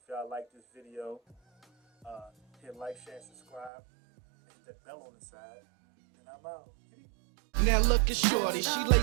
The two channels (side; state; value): left; drops out; at 3.7 s